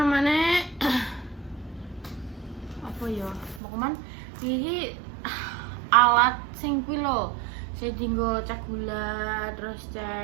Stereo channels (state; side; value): drops out; left; at 3.6 s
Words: apa ya? Mau kemana? Ini alat sing kuwi lho. Saya dinggo cek gula, terus